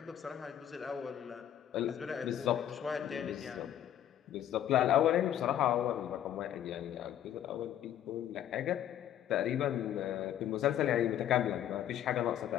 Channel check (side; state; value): right; quieter; 10.9 dB